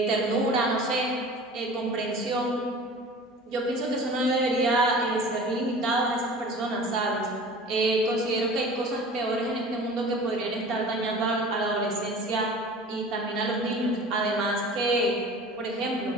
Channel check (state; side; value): normal; both; correlation 0.41